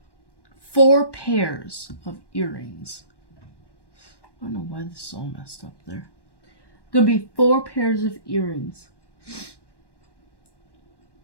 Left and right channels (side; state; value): right; late; 1.1 ms